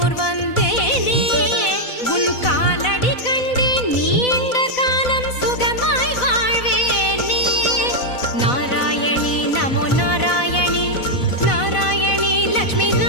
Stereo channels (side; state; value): right; late; 4.0 ms